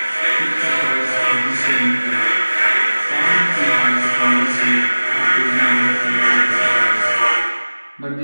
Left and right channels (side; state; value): both; inverted; correlation -1.00